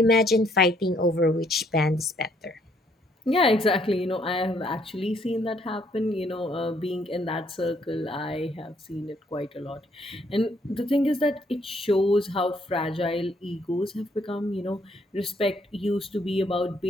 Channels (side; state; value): both; normal; correlation 0.68